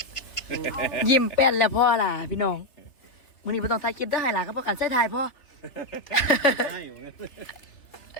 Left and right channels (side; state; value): right; late; 3.3 ms